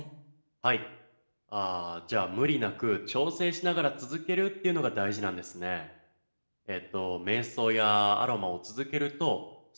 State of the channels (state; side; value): inverted; both; correlation -1.00